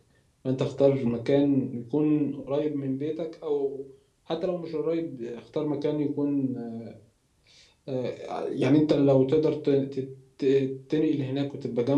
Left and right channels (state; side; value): identical; both; correlation 1.00